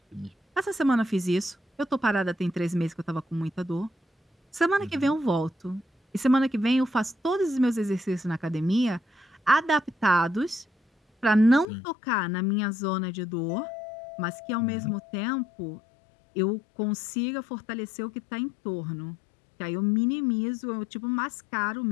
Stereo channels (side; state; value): right; drops out; at 11.7 s